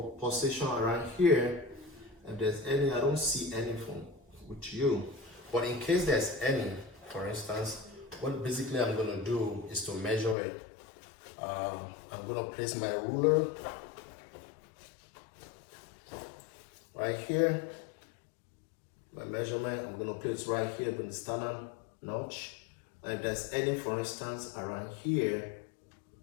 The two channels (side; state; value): right; drops out; at 10.4 s